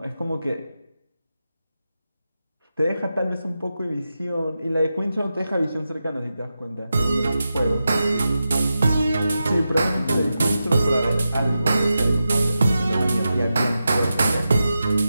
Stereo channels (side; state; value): both; inverted; correlation -0.90